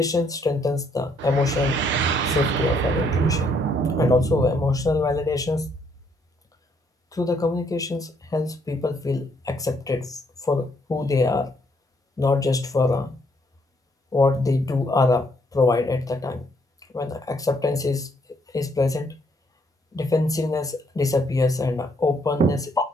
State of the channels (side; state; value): both; normal; correlation 0.70